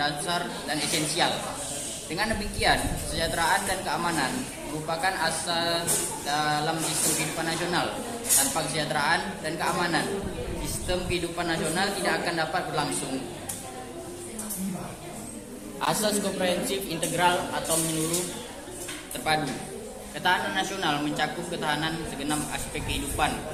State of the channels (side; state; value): both; identical; correlation 1.00